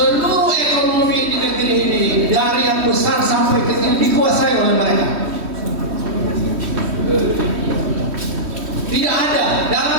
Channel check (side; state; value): left; late; 3.1 ms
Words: ekonomi di negeri ini dari yang besar sampai kecil dikuasai oleh mereka. Tidak ada